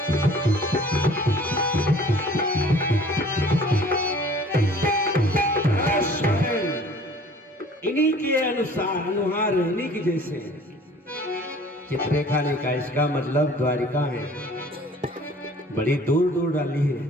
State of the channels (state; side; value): normal; both; correlation 0.50